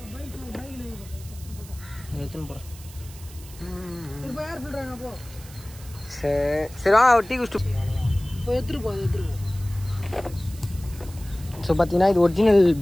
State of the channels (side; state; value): right; noise; hiss, 19 dB below the sound